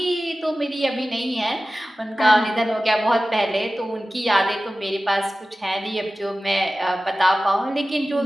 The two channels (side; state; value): both; normal; correlation 0.96